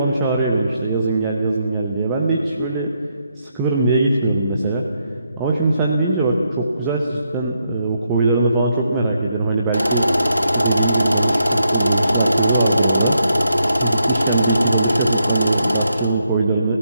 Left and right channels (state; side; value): inverted; both; correlation -0.80